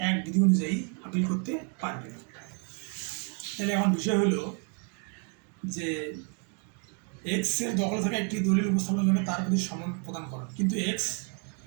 1 বিধি অনুযায়ী আপিল করতে পারবে। তাহলে এখন বিষয় হলো যে এক্স এর দখলে থাকা একটি দলিল উপস্থাপনের জন্য তার প্রতি সমন প্রদান করেন, কিন্তু এক্স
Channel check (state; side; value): quieter; left; 39.4 dB